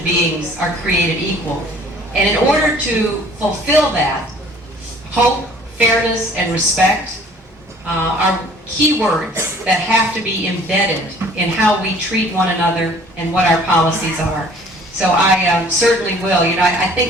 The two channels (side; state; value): both; normal; correlation 0.53